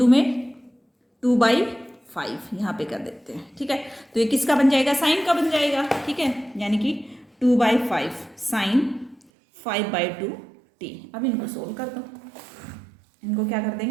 में 2/5 यहाँ पे कर देते हैं। ठीक है, तो ये किसका बन जाएगा, साइन का बन जाएगा। ठीक है, यानी कि 2/5 साइन 5/2t। अब इनको सोल्व कर दो, इनको क्या कर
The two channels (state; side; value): drops out; left; at 9.2 s